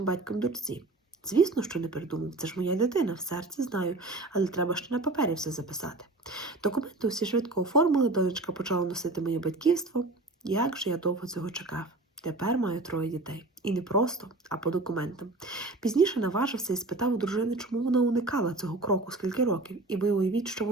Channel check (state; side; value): quieter; left; 3.0 dB